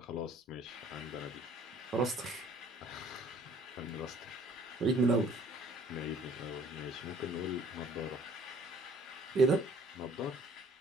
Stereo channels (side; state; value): both; normal; correlation 0.55